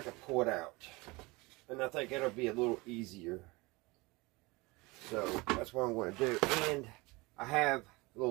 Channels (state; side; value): quieter; left; 23.9 dB